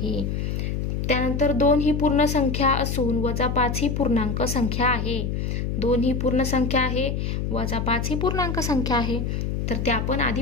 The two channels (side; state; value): left; noise; hum, 1 dB below the sound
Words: त्यानंतर 2 ही पूर्ण संख्या असून -5 ही पूर्णांक संख्या आहे. 2 ही पूर्ण संख्या आहे, -5 ही पूर्णांक संख्या आहे. तर ते आपण आधी